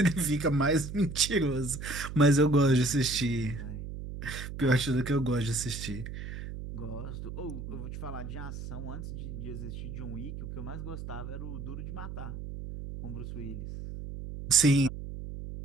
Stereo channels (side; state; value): right; noise; hum, 8 dB below the sound